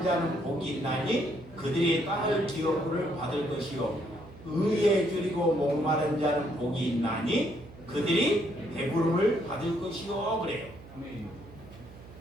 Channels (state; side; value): noise; right; hum, 19 dB below the sound